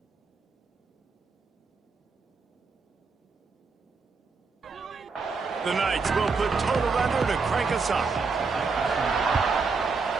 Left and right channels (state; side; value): quieter; left; 4.6 dB